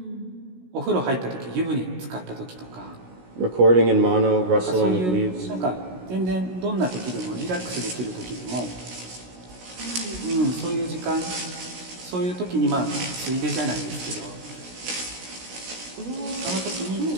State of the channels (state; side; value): late; left; 16 ms